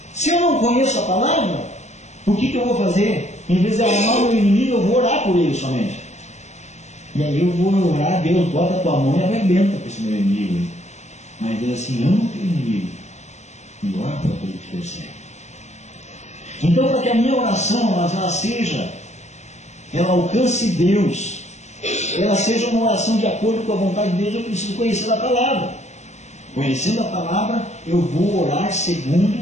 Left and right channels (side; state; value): right; late; 0.33 ms